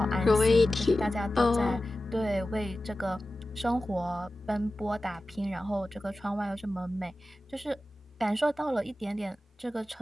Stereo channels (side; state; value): both; normal; correlation 0.95